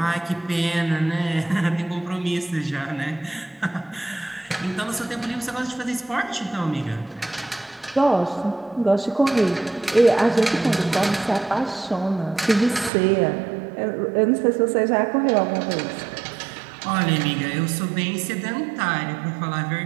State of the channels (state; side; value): drops out; left; at 12.9 s